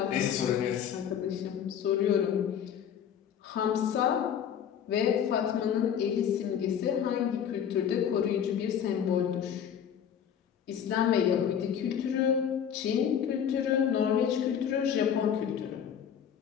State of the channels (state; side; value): quieter; right; 8.6 dB